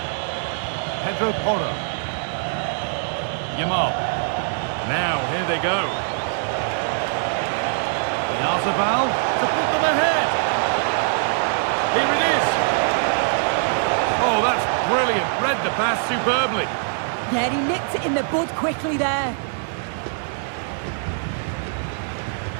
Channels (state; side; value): silent; left; digital silence